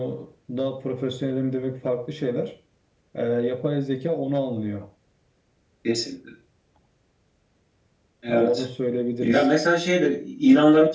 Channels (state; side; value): identical; both; correlation 1.00